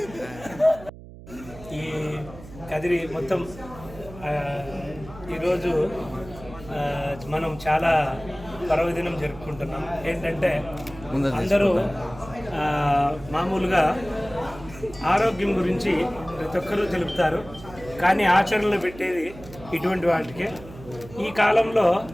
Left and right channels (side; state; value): right; noise; hum, 17 dB below the sound